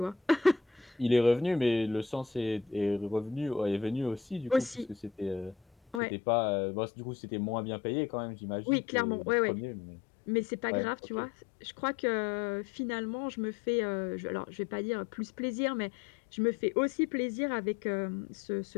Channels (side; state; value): right; drops out; at 6.0 s